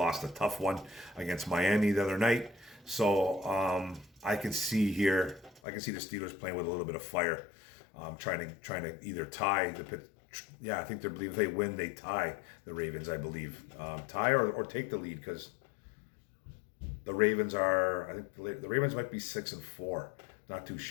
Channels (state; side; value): drops out; right; at 5.6 s